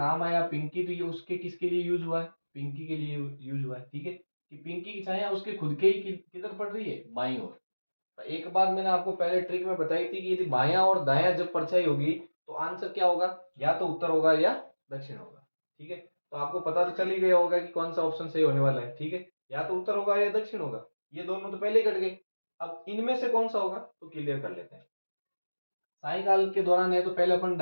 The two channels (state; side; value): inverted; both; correlation -1.00